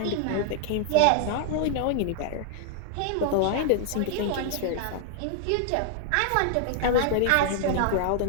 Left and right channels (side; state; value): both; different; correlation 0.00